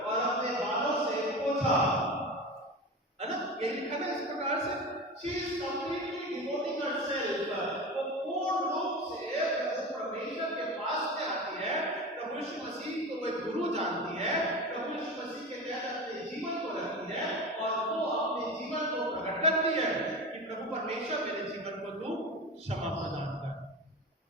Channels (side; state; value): both; normal; correlation 0.28